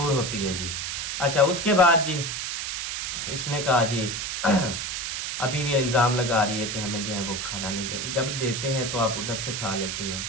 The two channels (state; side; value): noise; right; hiss, 3 dB below the sound